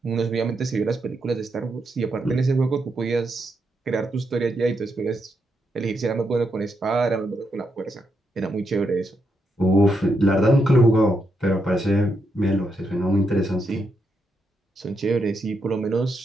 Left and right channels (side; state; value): both; normal; correlation 0.81